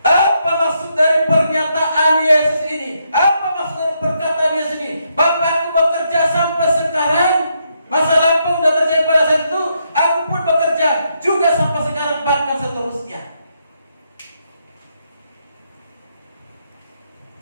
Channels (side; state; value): both; inverted; correlation -0.78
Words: Apa maksud dari pernyataan Yesus ini? Apa maksud dari perkataan Yesus ini? Bapakku bekerja sampai sekarang, masa lampau sudah terjadi pada saat itu, aku pun bekerja juga sampai sekarang, bahkan seterusnya.